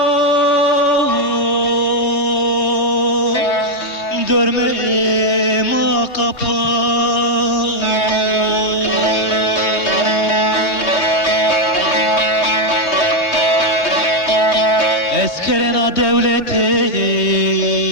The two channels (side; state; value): right; late; 3.2 ms